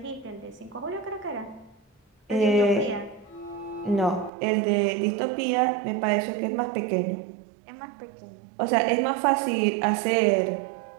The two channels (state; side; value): drops out; left; at 4.3 s